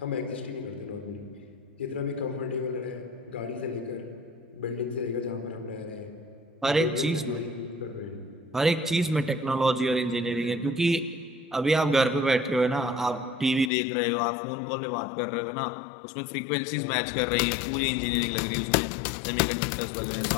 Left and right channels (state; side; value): drops out; right; at 13.7 s